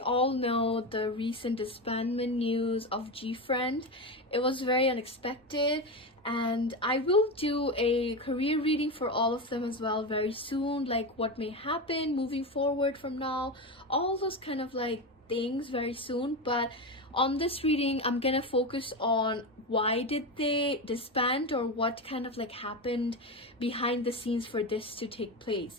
know the recent disbandment news of Gfriend. It was very unexpected, and I will do a career reading for all of them as well very soon, like what may happen moving forward from now, all those kind of like things very soon. But on this reading I'm gonna focus on why did they disband, or what kind of like happened behind the scenes for this to take place.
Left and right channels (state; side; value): normal; both; correlation 0.18